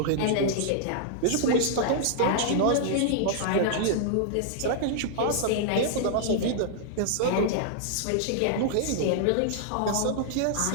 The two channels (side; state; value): both; different; correlation -0.01